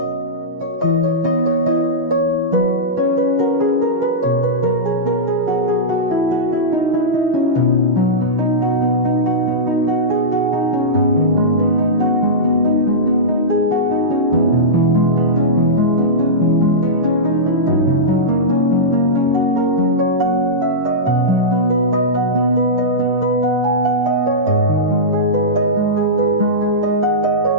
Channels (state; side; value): late; left; 6.6 ms